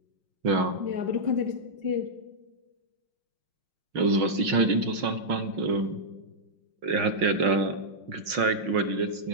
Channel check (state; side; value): late; left; 5.6 ms